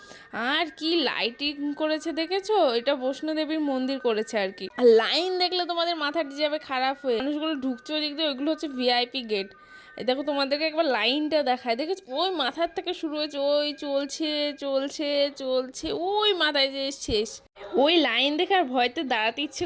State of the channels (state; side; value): identical; both; correlation 1.00